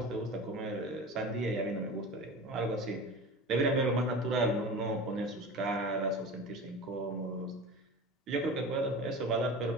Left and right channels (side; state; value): both; normal; correlation 0.33